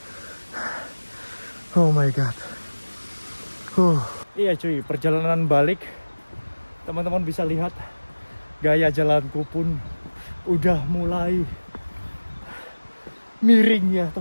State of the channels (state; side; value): inverted; both; correlation -1.00